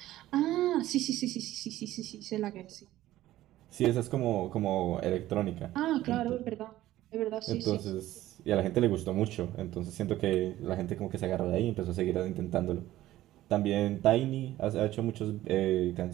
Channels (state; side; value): quieter; left; 14.9 dB